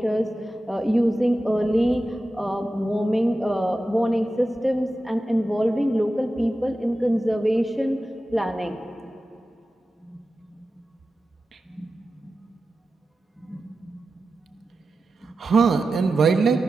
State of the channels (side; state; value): both; normal; correlation 0.93